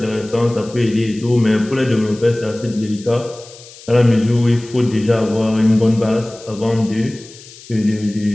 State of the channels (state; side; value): noise; left; hiss, 20 dB below the sound